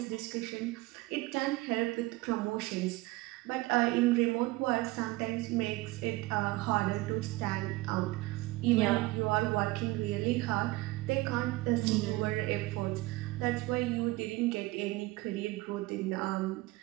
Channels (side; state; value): left; quieter; 20.4 dB